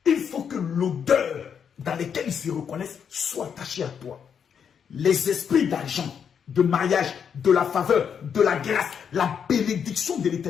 il faut que l'odeur dans laquelle ils se reconnaissent soit attachée à toi. Les esprits d'argent, de mariage, de la faveur, de la grâce, la bénédiction de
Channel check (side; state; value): right; quieter; 7.4 dB